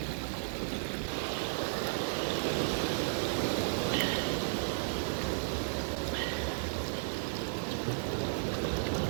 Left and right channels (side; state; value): left; silent; digital silence